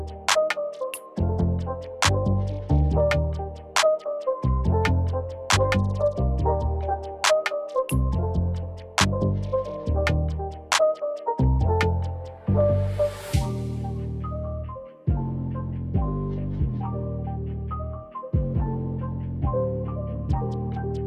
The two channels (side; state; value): both; identical; correlation 1.00